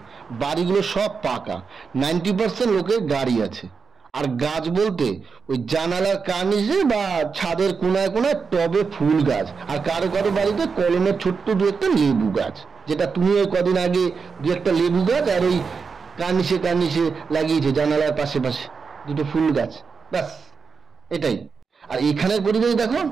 বাড়িগুলো সব পাকা, 90% লোকের গাড়ি আছে। আর গাছ বলতে ওই জানালার কার্নিশে বা ছাদের কোনায় কোনায় টবে ফুল গাছ, আর কারো কারো বাড়িতে কলমের ছোট্ট দু একটা লেবু গাছ, যেটা তুমি ওই কদিন আগে দু একটা লেবু গাছ আর ওই কার্নিশে কার্নিশে লাগিয়েছে জানালার পাশে পাশে দুটো ফুল গাছ, ব্যাস এটাই। আর এখানের পরিবেশ দেখো,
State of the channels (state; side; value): quieter; left; 5.4 dB